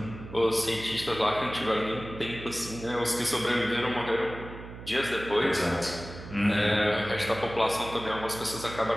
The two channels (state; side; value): noise; right; hum, 13 dB below the sound